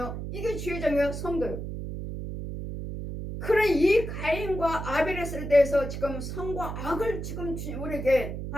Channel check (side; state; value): right; noise; hum, 6 dB below the sound